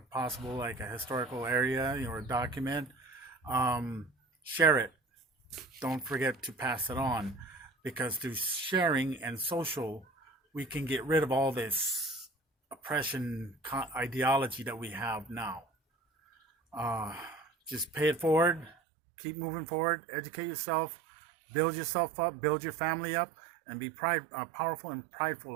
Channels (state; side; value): drops out; left; at 18.7 s